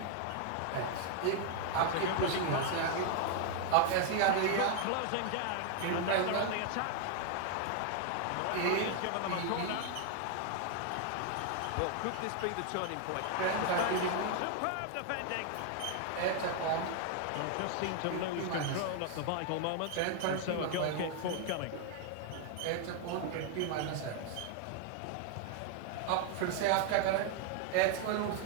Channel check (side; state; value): both; different; correlation 0.00